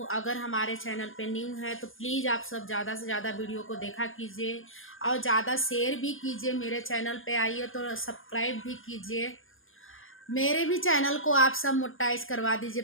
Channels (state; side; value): late; right; 0.59 ms